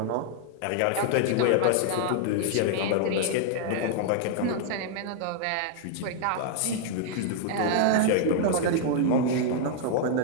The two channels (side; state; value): both; different; correlation -0.01